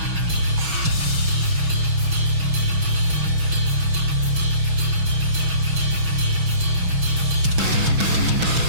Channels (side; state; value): left; late; 6.2 ms